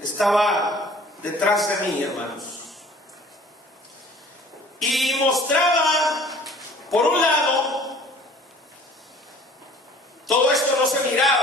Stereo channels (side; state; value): both; normal; correlation 0.50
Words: estaba detrás de mí, hermanos, y mostraba, por un lado, todo esto no se